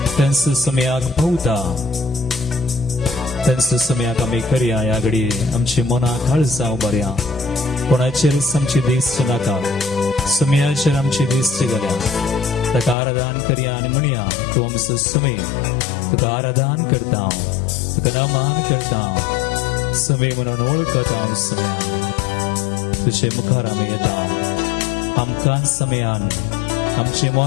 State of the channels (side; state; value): right; drops out; at 13.0 s